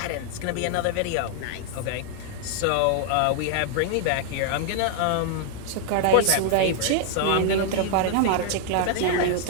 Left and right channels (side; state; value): both; different; correlation 0.00